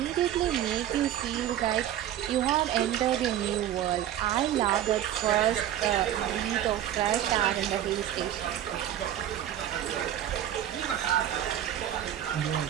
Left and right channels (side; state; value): left; quieter; 11.5 dB